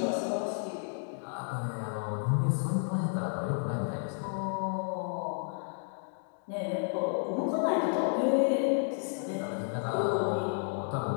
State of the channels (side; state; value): right; silent; 57 dB below the other